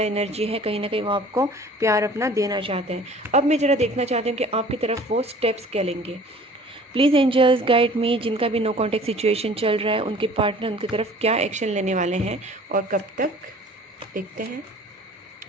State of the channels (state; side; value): normal; both; correlation 0.48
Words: एनर्जी है, कहीं ना कहीं वो आपको प्यार अपना देना चाहते हैं। अब मैं ज़रा देखना चाहती हूँ कि आपकी तरफ वो स्टेप्स क्या लेंगे। प्लीज़ एंजल्स गाइड मी, जिनका भी नो कॉन्टेक्ट सिचुएशन चल रहा है उनके पार्टनर उनकी तरफ क्या एक्शन लेने वाले हैं और कब तक, देखते हैं।